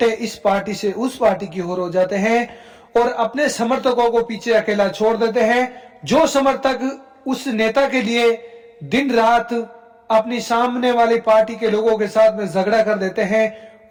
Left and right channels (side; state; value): both; identical; correlation 1.00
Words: इस पार्टी से उस पार्टी की ओर हो जाते हैं और अपने समर्थकों को पीछे अकेला छोड़ देते हैं। जो समर्थक उस नेता के लिए दिन रात अपनी सामने वाली पार्टी के लोगों के साथ में झगड़ा कर देते हैं